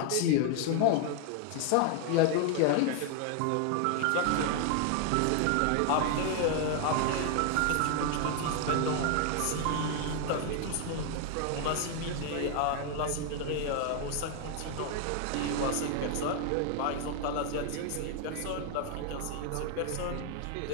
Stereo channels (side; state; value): both; different; correlation 0.00